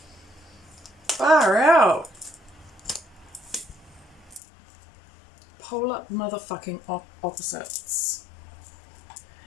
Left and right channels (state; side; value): drops out; right; at 4.4 s